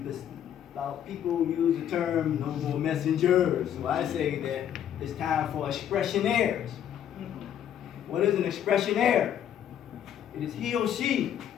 people use the term no more messengers. So I say that it's time for expressionaires. What is an expressionaire? It is he or she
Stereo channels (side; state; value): right; quieter; 9.9 dB